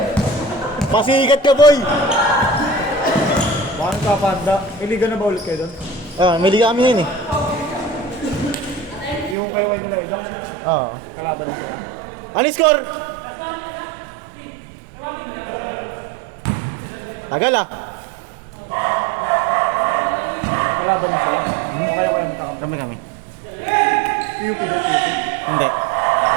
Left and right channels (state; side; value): drops out; left; at 9.3 s